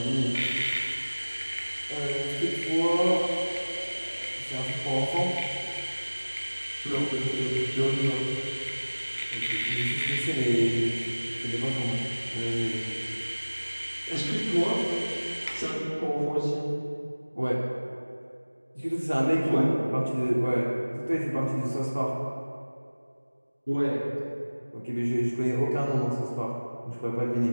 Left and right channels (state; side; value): inverted; both; correlation -1.00